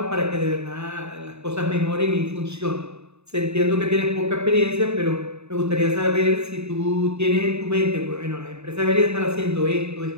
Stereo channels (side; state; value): left; late; 0.80 ms